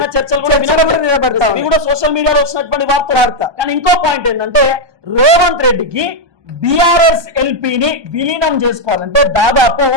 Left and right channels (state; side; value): late; left; 1.2 ms